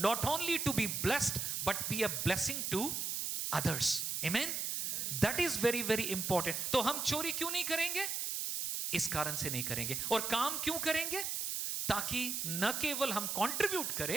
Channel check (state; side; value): noise; right; hiss, 1 dB below the sound